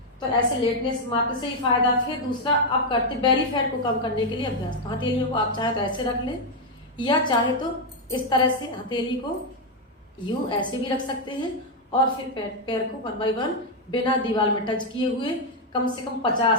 तो ऐसे लेटने से मात्र से ही फायदा। फिर दूसरा आप करते बेली फैट को कम करने के लिए अभ्यास, तो हथेलियों को आप चाहे तो ऐसे रख लें या चाहे तो इस तरह से हथेली को यूं ऐसे भी रख सकते हैं और फिर पैर को 1 बाय 1 बिना दीवार में टच किए हुए कम से कम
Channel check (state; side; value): normal; both; correlation 0.01